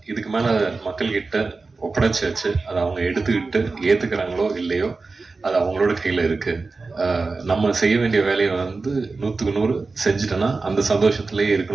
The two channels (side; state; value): left; quieter; 3.9 dB